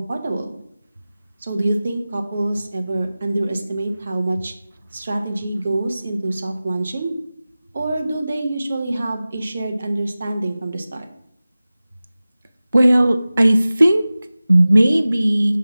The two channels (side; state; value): both; inverted; correlation -0.97